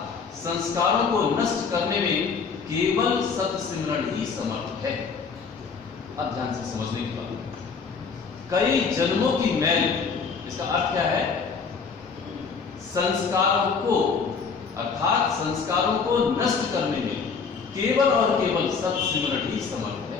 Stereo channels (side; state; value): right; quieter; 5.5 dB